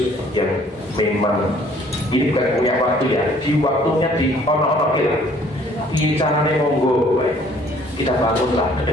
yang memang ini bukan punya waktu ya, di waktunya di ono-ono kita. Ini caranya monggo, kita bangunlah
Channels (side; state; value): both; normal; correlation 0.58